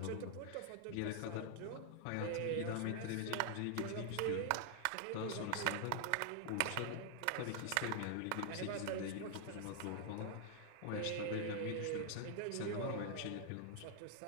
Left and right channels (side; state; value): both; different; correlation 0.00